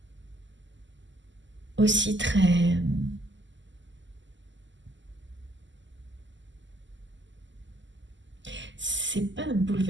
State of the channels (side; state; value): left; late; 0.54 ms